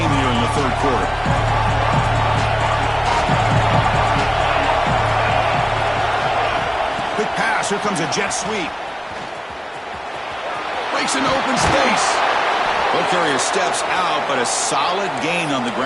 here in the third quarter. Quick pass, here comes a jet sweep. Breaks into open space. Ball carrier steps out, but a solid gain on the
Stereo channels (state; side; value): identical; both; correlation 1.00